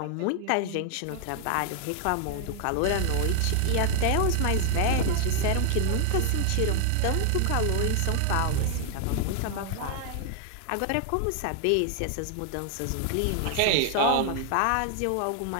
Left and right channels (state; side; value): different; both; correlation 0.00